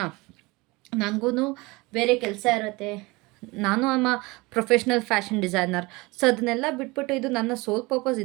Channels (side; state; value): left; quieter; 23.9 dB